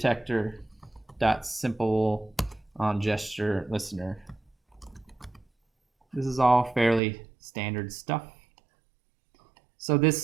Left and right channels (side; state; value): left; drops out; at 7.0 s